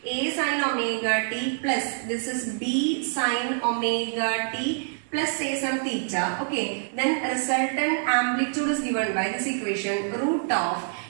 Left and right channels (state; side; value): silent; left; digital silence